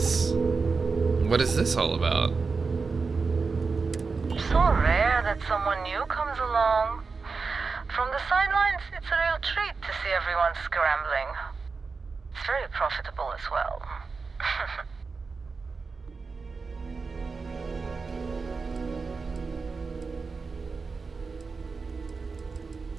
What is this all about? So rare that someone new comes along. From the sidelines, it's a real treat to see everyone scrambling. It's very profitable as well.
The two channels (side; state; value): left; quieter; 4.6 dB